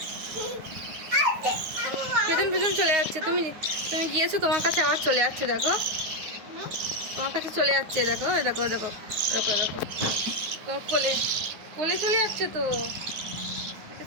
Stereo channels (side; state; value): left; late; 9.6 ms